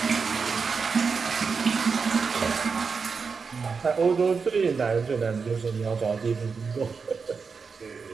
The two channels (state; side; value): quieter; left; 5.2 dB